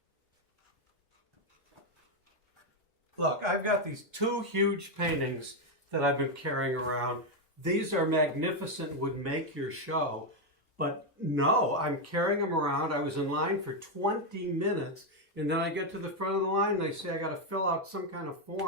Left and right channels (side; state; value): both; normal; correlation 0.04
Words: Look, I've got these 2 huge paintings that I've been carrying around. These are magnificent, would make your show. But no, I'm carrying them around. I was in line for 20 minutes, and then I get to the front of the line, and they say I got to fill out some kind of